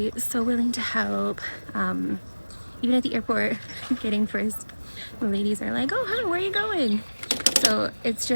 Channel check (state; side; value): inverted; both; correlation -1.00